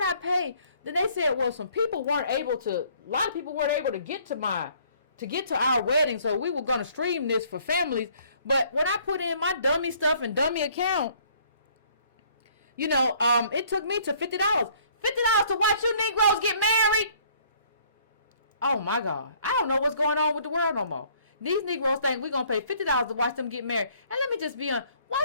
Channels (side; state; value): both; inverted; correlation -0.60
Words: I pay? Then they said, well, a lot of people weren't able to get to our wedding, so we were going to stream this for families. But when I put in my dummy stuff and dummy account, it took me to $50. $50 to watch you Negroes get married? Oh, my God. I don't know what's going on with the world no more. These Negroes think we're going to pay $50 to watch them get married. And let me just be honest, why